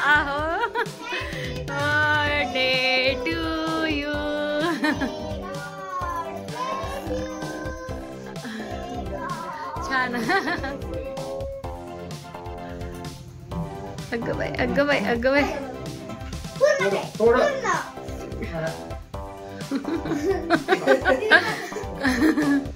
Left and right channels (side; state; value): both; identical; correlation 1.00